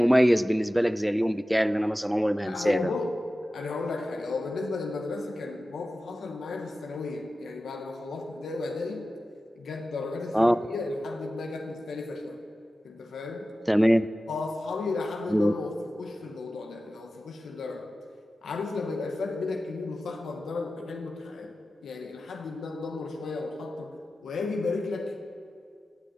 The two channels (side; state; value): both; normal; correlation 0.94